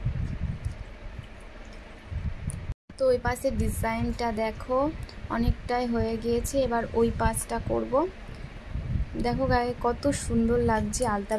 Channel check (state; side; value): identical; both; correlation 1.00